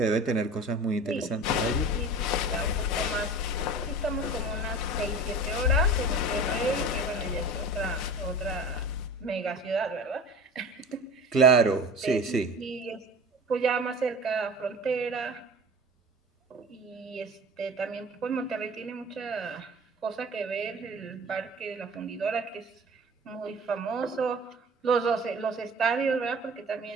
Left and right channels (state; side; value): normal; both; correlation 0.37